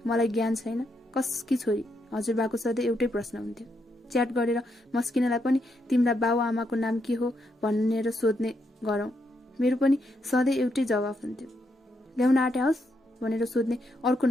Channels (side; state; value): both; normal; correlation 0.79